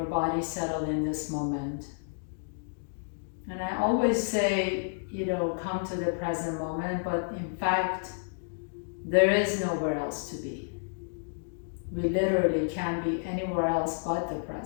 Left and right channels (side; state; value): right; silent; digital silence